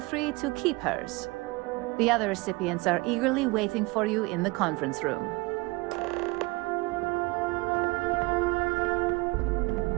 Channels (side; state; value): left; quieter; 24.1 dB